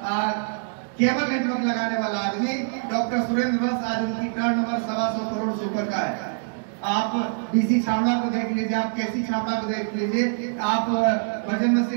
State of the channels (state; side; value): silent; left; digital silence